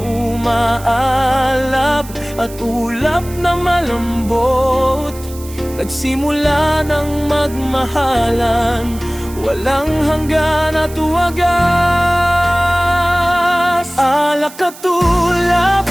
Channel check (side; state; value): right; noise; hiss, 18 dB below the sound